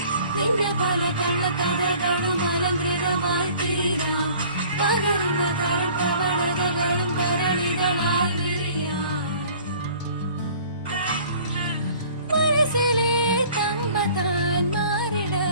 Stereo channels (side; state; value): both; inverted; correlation -0.50